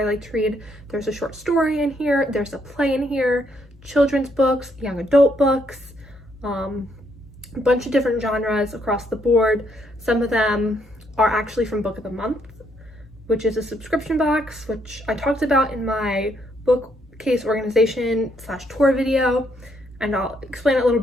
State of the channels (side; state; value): both; normal; correlation 0.73